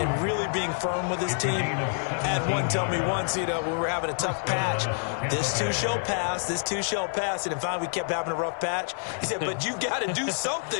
really being firm with his team. I had one tell me once, when we were having a tough patch, this too shall pass, this too shall pass. And finally we kept having a rough patch. He said, but you've got to do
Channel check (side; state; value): right; silent; 60 dB below the other